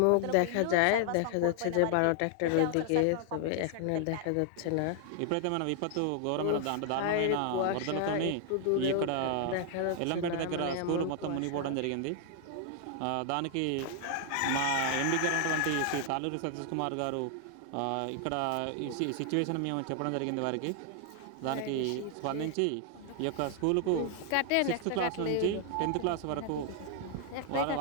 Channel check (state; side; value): different; both; correlation 0.00